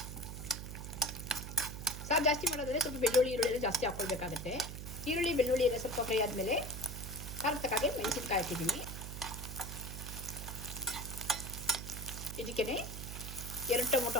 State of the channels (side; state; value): right; noise; hum, 8 dB below the sound